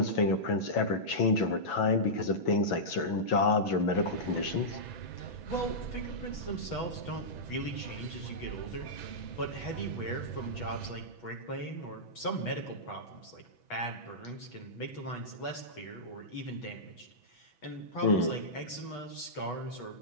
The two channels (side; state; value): right; late; 6.1 ms